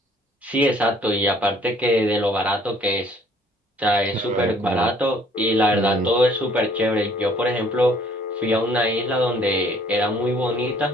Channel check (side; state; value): both; normal; correlation 0.59